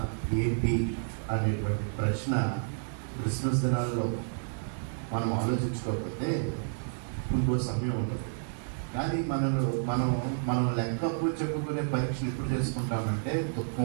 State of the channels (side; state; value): left; silent; digital silence